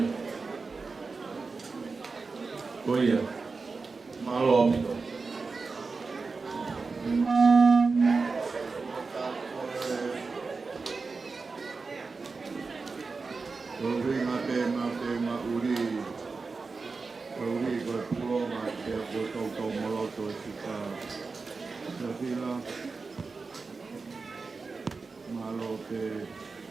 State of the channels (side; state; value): left; quieter; 4.3 dB